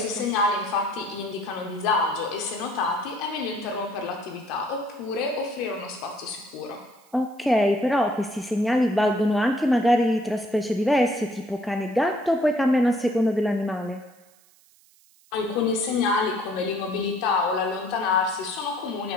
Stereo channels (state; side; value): noise; right; hiss, 30 dB below the sound